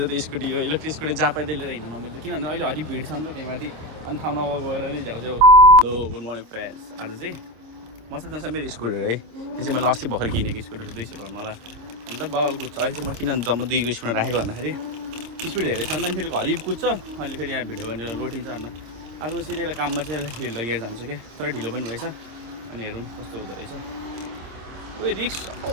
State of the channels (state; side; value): late; left; 26 ms